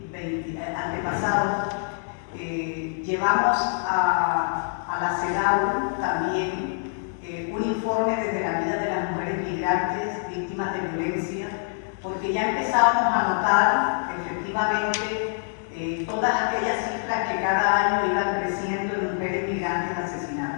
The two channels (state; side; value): silent; right; digital silence